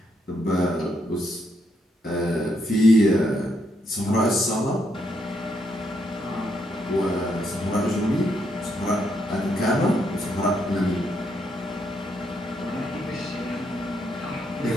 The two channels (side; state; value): both; normal; correlation 0.77